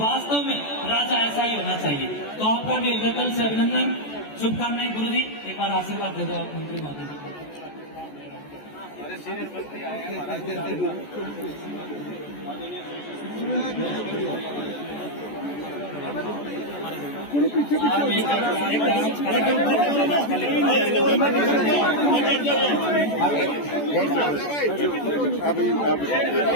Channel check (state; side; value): late; right; 14 ms